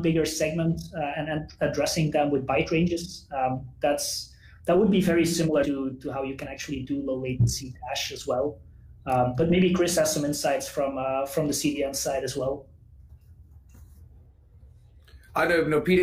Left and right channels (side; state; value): both; identical; correlation 1.00